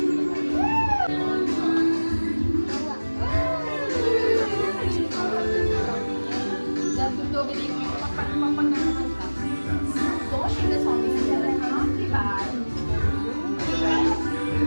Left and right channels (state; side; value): inverted; both; correlation -1.00